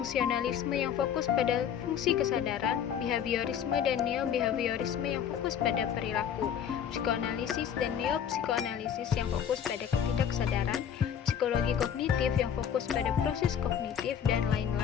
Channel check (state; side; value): quieter; right; 8.6 dB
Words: yang fokus pada fungsi kesadaran, behaviorisme dan neo-behaviorisme yang fokus pada perilaku, psikoanalisis dan neo-psikoanalisis yang fokus pada ketidaksadaran, psikologi kognitif yang fokus pada proses kognitif, dan